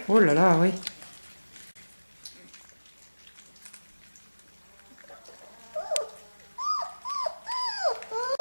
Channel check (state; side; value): inverted; both; correlation -1.00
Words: Oh là là, oui.